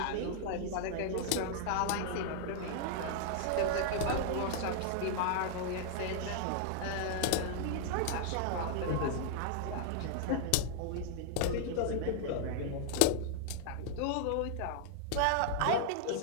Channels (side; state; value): both; different; correlation 0.00